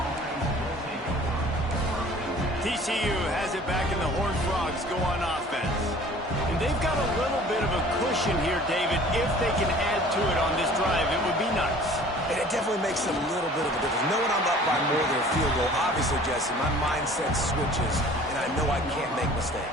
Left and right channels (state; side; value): normal; both; correlation 0.49